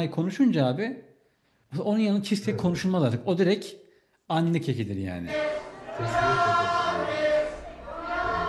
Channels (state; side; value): identical; both; correlation 1.00